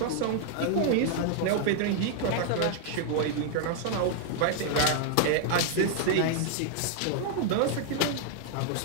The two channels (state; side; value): different; both; correlation 0.00